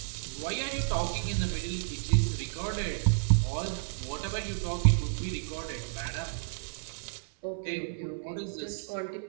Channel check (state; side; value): silent; left; 57 dB below the other